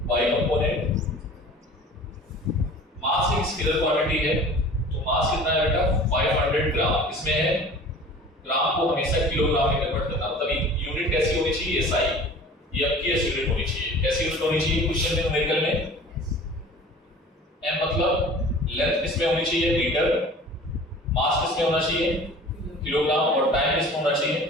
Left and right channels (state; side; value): normal; both; correlation 0.43